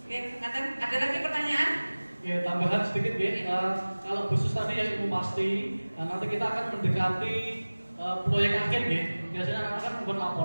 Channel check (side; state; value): both; inverted; correlation -1.00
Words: Oke, ada lagi pertanyaan? Ya, tambahan sedikit ya. Kalau khusus tadi yang ilmu pasti, nanti kita akan mendekati proyek akhir ya. Biasanya anak-anak kan membuat